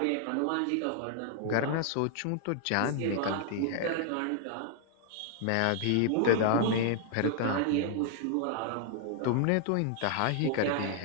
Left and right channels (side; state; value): both; different; correlation -0.01